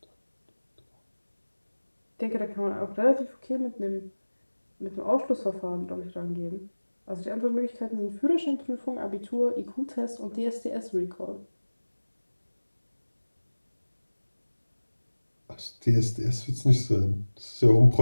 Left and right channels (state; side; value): inverted; both; correlation -1.00